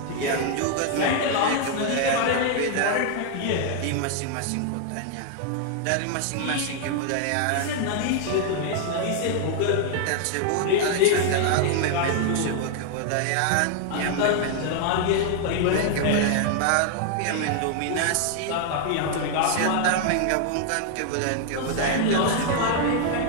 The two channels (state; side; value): different; both; correlation 0.00